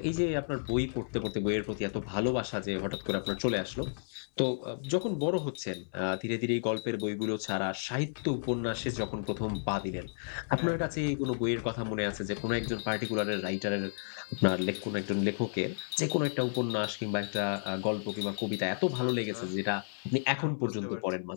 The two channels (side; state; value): right; silent; 56 dB below the other